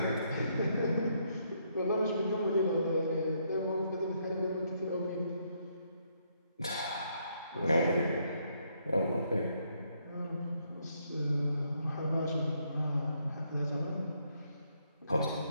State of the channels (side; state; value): both; inverted; correlation -0.73